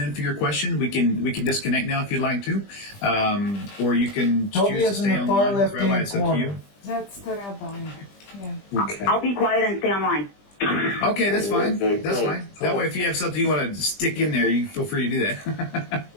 in for your question, we can disconnect now if you'd like to, or you can Toby choose to is in stay the far online. left-hand Rabbi, it's up to you. corner. That's the rabbi. Yeah. Okay. I'll be quiet and stay online. Okay, that's fine. Okay, That's good. fine. That way, if you have something you want to stick in there, you feel free to do that.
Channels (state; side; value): late; right; 20 ms